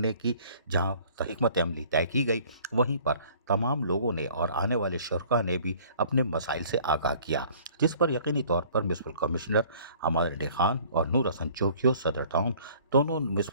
کی جہاں حکمت عملی طے کی گئی، وہیں پر تمام لوگوں نے اور آنے والے شرکاء نے بھی اپنے مسائل سے آگاہ کیا، جس پر یقینی طور پر میونسپل کمشنر حماد انڈی خان اور نور حسن چوکیو صدر ٹاؤن دونوں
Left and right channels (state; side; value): inverted; both; correlation -0.53